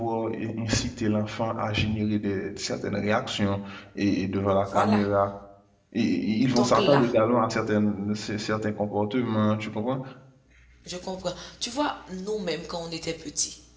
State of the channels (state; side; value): identical; both; correlation 1.00